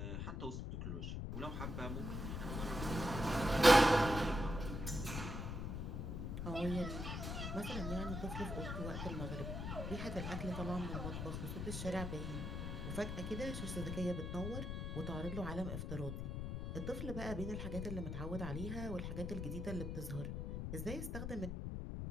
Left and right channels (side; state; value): left; noise; rumble, 3 dB below the sound